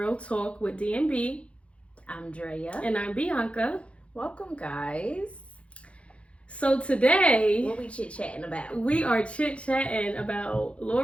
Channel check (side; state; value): right; late; 0.061 ms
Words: Talk with D&B. I'm Drea. And I'm Bianca. Welcome, guys. So today... What we chit-chatting about? We are chit-chatting about